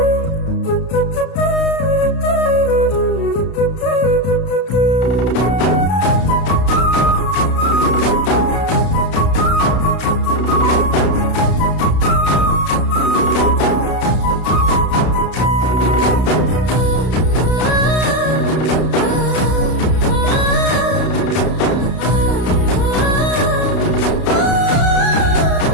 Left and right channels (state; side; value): late; right; 32 ms